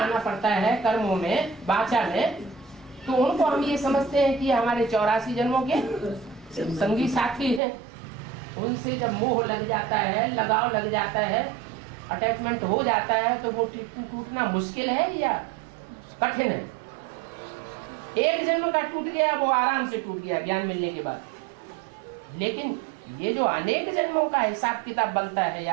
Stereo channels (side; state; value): left; drops out; at 7.6 s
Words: पड़ता है, कर्मों में, वाचा में, तो उनको हम ये समझते हैं कि हमारे 84 जन्मों के संगी साथी हैं। उनसे जब मोह लग जाता है, लगाव लग जाता है, अटैचमेंट हो जाता है, तो वो टूटना मुश्किल है या कठिन है? एक जन्म का टूट गया, वो आराम से टूट गया ज्ञान मिलने के बाद। लेकिन ये जो अनेक जन्मों का हिसाब किताब बनता है